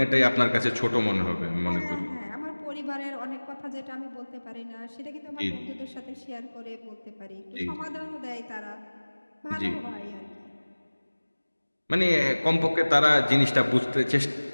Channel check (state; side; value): inverted; both; correlation -1.00